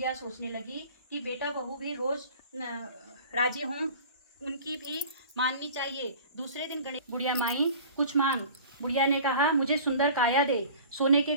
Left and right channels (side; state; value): both; inverted; correlation -0.43